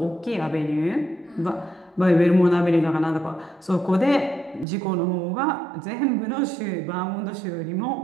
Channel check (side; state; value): left; drops out; at 4.7 s